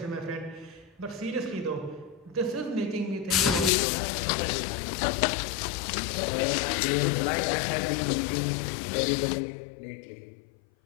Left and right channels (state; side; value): drops out; right; at 3.7 s